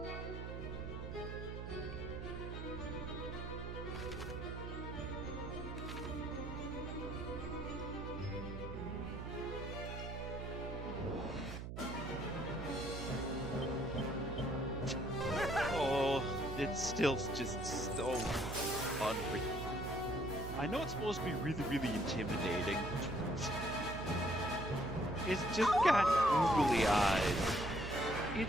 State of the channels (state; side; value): noise; right; hum, 7 dB below the sound